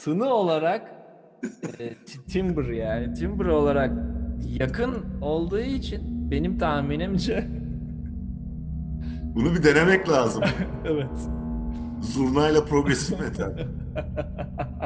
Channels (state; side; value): identical; both; correlation 1.00